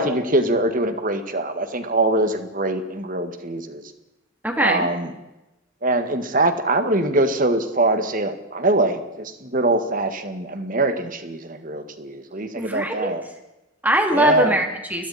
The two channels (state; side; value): normal; both; correlation 0.09